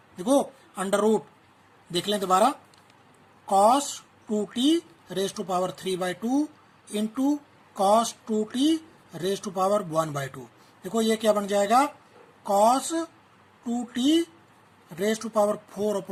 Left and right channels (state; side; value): identical; both; correlation 1.00